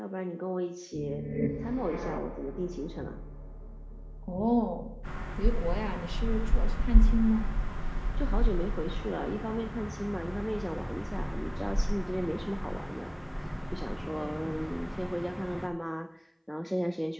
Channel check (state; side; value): identical; both; correlation 1.00